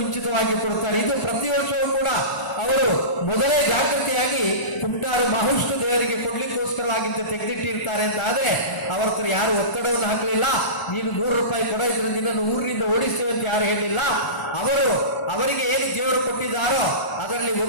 ಕೊಡ್ತಾರೆ. ಇದು ಪ್ರತಿ ವರ್ಷವೂ ಕೂಡ ಅವರು ಮೊದಲೇ ಜಾಗೃತಿಯಾಗಿ ಕುಂಟಾರು ಮಹಾವಿಷ್ಣು ದೇವರಿಗೆ ಕೊಡ್ಲಿಕ್ಕೋಸ್ಕರವಾಗಿಂತ ತೆಗೆದಿಟ್ಟಿರ್ತಾರೆ ಅಂತ ಆದರೆ ಅವರ ಹತ್ರ ಯಾರು ಒತ್ತಡವನ್ನು ಹಾಕಲಿಲ್ಲ. ನೀನು 100 ರೂಪಾಯಿ ಕೊಡ, ಇದ್ರೆ ನಿನ್ನನ್ನು ಊರಿನಿಂದ ಓಡಿಸ್ತೇವೆ ಅಂತ ಯಾರು ಹೇಳಿಲ್ಲ. ಅವರಿಗೆ ಏನು ದೇವರು ಕೊಟ್ಟಿದ್ದಾರೋ ಅದರಲ್ಲಿ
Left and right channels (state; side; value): late; right; 1.0 ms